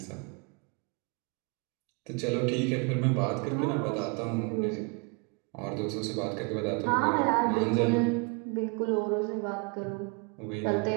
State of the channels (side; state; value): left; quieter; 32.6 dB